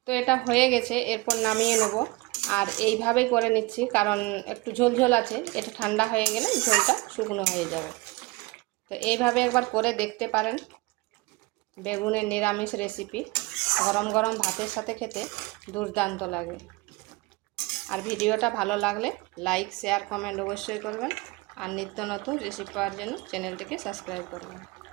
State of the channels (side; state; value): left; quieter; 23.5 dB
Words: তো এটা হয়ে গেছে, এরপর নামিয়ে নেব। আর এইভাবে করে নিচ্ছি কারণ একটু ঝোল আছে, এটা ঠান্ডা হয়ে গেলে ঝোলটা শুকনো হয়ে যাবে। তো এইভাবে একবার করে দেখতে পারেন। বেগুনের নিরামিষ রেসিপি গরম গরম ভাতের সাথে খেতে দুর্দান্ত লাগে। আর ভিডিওটা ভালো লাগলে লাইক, শেয়ার, কমেন্ট অবশ্যই করবেন। আর নিত্য নতুন রেসিপি পাওয়ার জন্য চ্যানেলটিকে সাবস্ক্রাইব করবেন।